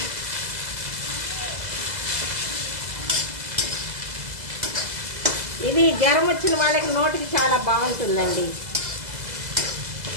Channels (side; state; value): left; late; 2.0 ms